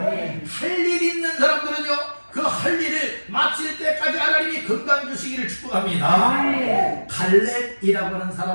할 일 있는 사람들은요, 그 할 일을 마칠 때까지 하나님이 건강 주시기를 축복합니다. 갈렙이라고 하는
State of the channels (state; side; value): inverted; both; correlation -1.00